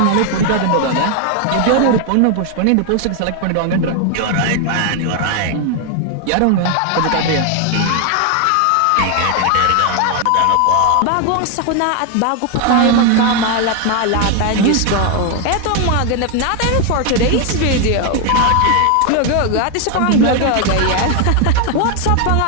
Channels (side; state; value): both; different; correlation 0.01